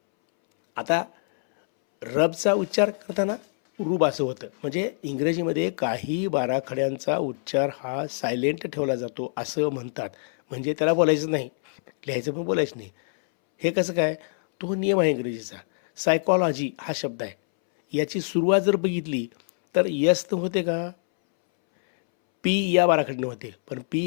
आता रबचा उच्चार करताना रूप असं होतं, म्हणजे इंग्रजीमध्ये काही बाराखड्यांचा उच्चार हा सायलेंट ठेवला जातो असं म्हणतात. म्हणजे त्याला बोलायचं नाही, लिहायचं पण बोलायचं नाही. हे कसं काय? तो नियम आहे इंग्रजीचा. सायकॉलॉजी हा शब्द आहे, याची सुरुवात जर बघितली तर यस तर होते का? पी या बाराखडीने होते, पण पी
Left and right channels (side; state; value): right; silent; 62 dB below the other